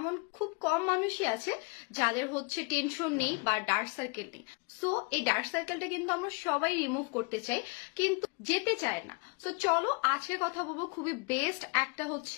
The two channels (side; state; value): right; quieter; 31.4 dB